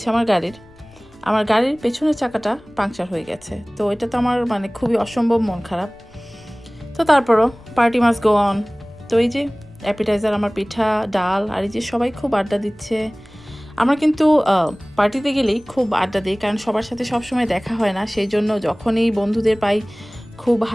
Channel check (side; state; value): left; noise; rumble, 30 dB below the sound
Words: আমার গাড়ির পেছনের চাকাটা পাংচার হয়ে গেছে। তো এটা তো আমার মানে খুবই অসম্ভব মন খারাপ। তো তারপরও পার্টি মাস্ট গো অন। তো এই যে অ্যাপিটাইজার আমার পিঠা, ডাল, আর এই যে সবাই খুব আড্ডা দিচ্ছে। আমরা কিন্তু পার্টিতে গেলেই খুব আড্ডা দিই, কারণ সবার সাথে সবসময় দেখা হয় না, সেই জন্য যখনই বন্ধুদের পাই খুব